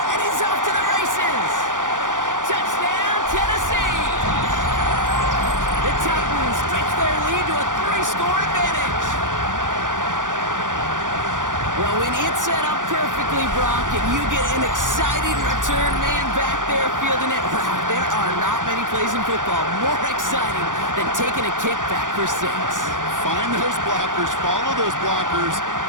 and he's off to the races. Touchdown, Tennessee. The Titans stretch their lead to a 3-score advantage. Well, when it's set up perfectly, Brock, and you get an exciting return man back there fielding it, wow, there are not many plays in football more exciting than taking a kick back for 6. Find those blockers, follow those blockers,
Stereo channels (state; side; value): late; left; 0.88 ms